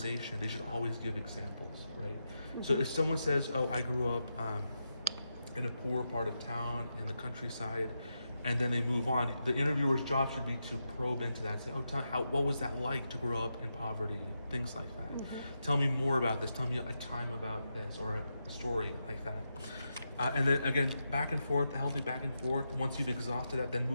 they should always give examples, right? So if someone says, oh, I grew up in a poor part of town in the countryside, and then they move on, the interviewer's job should be to probe into that and say, oh, what was that like to grow up in poverty? Things like that. Tell me more about this. Tell me a time about this, or a story like that. And then again, back and forth, healthy back and forth. Once you've exhausted that, then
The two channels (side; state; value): both; inverted; correlation -0.86